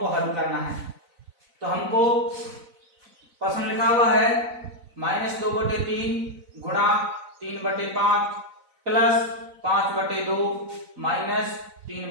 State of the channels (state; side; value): late; left; 4.0 ms